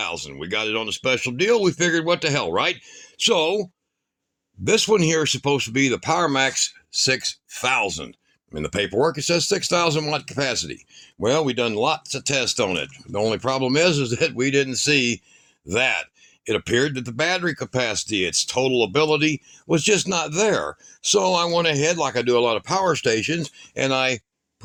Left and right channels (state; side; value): identical; both; correlation 1.00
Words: We got it on a special deal. We figured what the hell, right? So this one here is supposed to be the PowerMax 6000. In the paperwork it says 6,000 watt capacity. Well, we done lots of tests on it. The only problem is that we didn't see that. It appeared that the battery capacity, its total ability, was just not there. So I went ahead, like I do a lot of power stations, and I